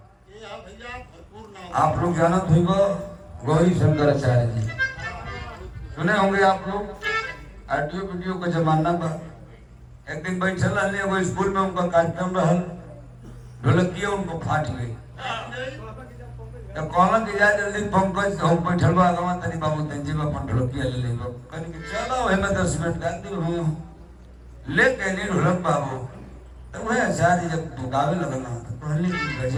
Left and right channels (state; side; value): identical; both; correlation 1.00